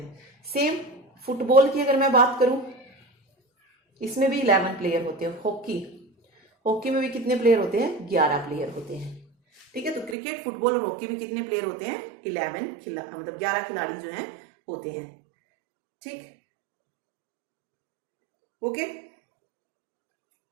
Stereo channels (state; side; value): drops out; left; at 10.2 s